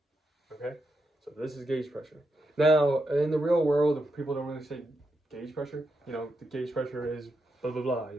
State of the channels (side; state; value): both; normal; correlation 0.84